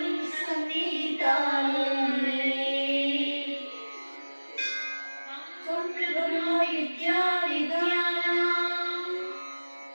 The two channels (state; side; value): inverted; both; correlation -1.00